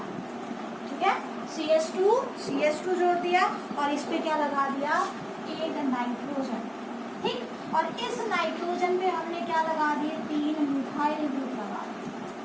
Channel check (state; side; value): identical; both; correlation 1.00